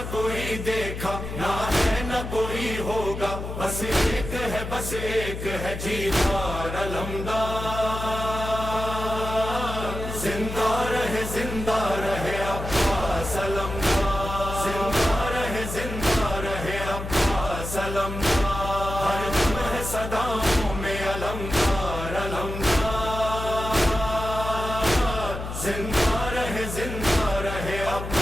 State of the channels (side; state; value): left; noise; hum, 7 dB below the sound